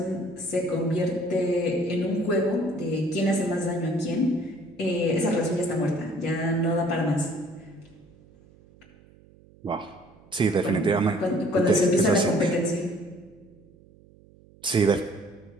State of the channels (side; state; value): right; noise; hum, 26 dB below the sound